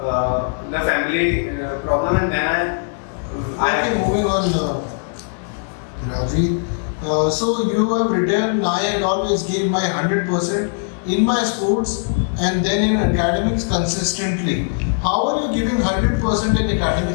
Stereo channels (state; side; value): silent; right; 60 dB below the other